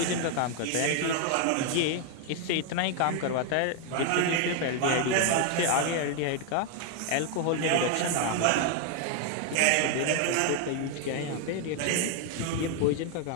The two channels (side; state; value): both; different; correlation 0.01